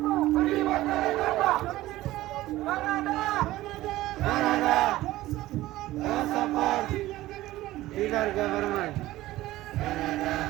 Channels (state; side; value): quieter; left; 16.5 dB